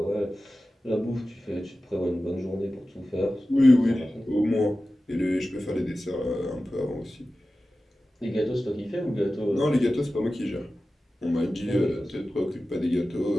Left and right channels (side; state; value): both; normal; correlation 0.95